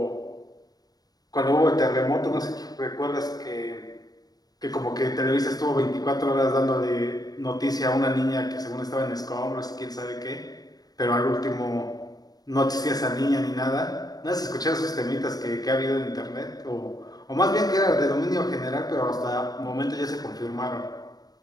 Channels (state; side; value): late; right; 0.19 ms